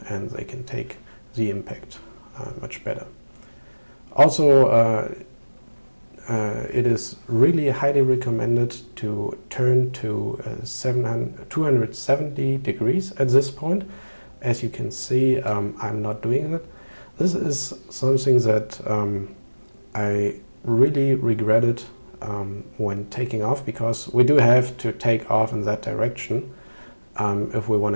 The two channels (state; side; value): inverted; both; correlation -1.00